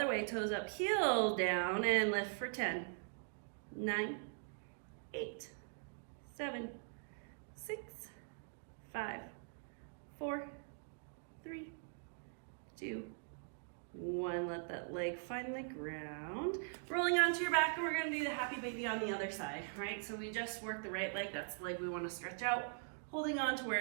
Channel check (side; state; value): left; silent; digital silence